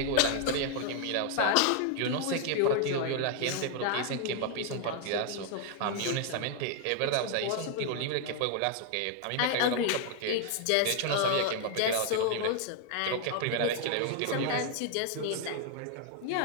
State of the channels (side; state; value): both; different; correlation 0.00